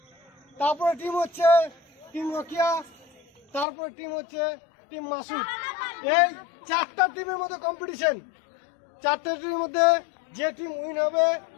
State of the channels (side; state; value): right; drops out; at 3.7 s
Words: তারপরে টিম হচ্ছে টিম রকিয়া, তারপরে টিম হচ্ছে টিম মাসুদ। এই 4টা টিমের মধ্যে কম্পিটিশন। 4টা টিমের মধ্যে যে টিম উইন হবে